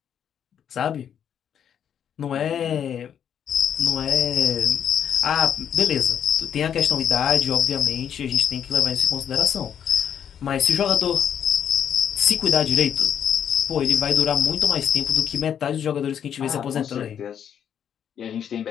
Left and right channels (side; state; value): right; quieter; 8.8 dB